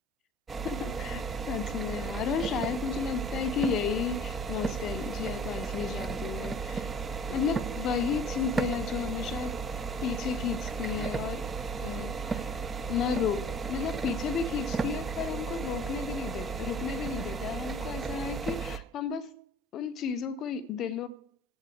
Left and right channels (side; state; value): both; normal; correlation 0.49